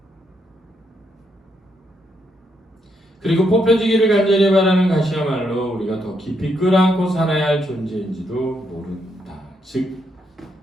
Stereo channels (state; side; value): normal; both; correlation 0.77